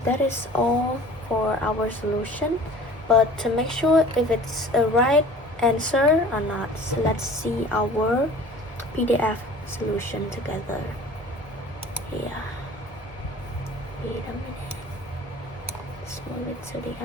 that is all for our solution. But to make sure if it's a right answer or not, so let's see our PDF solution together. Yeah. Wait a minute. Let's move it to the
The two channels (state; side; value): normal; both; correlation 0.45